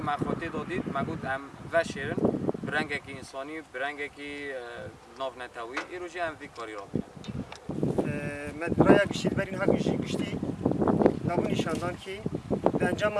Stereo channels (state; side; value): identical; both; correlation 1.00